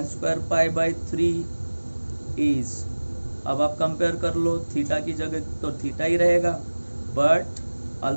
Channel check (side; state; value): both; inverted; correlation -1.00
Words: square π/3 is, अब आप compare कर लो, theta की जगह तो थीटा ही रहेगा, बट